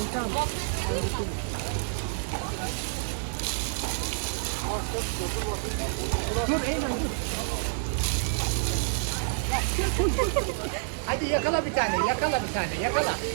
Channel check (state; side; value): silent; left; 59 dB below the other